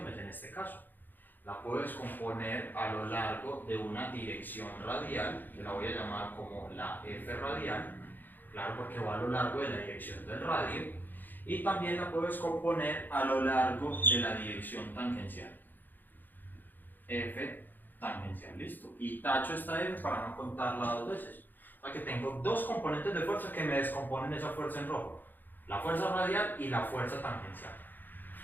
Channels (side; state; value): right; late; 0.088 ms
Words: en este caso. La puedo descomponer a lo largo de una dirección radial, que la voy a llamar como la F radial, claro, porque va a lo largo de la dirección del radio, y también la puedo descomponer a lo largo de la dirección tangencial. F tangencial, listo. Y tacho esta F para no contarla dos veces. O sea que tengo dos componentes de fuerza que me descomponen esa fuerza en rojo. La fuerza radial y la fuerza tangencial.